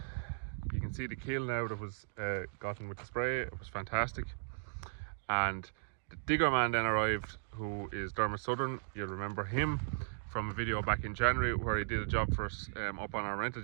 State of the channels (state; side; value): silent; left; digital silence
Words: You can see the kill now that was gotten with the spray. It was fantastic. And the digger man then arrived, who is Dermot Southern. You'll remember him from a video back in January where he did a job for us up on our rented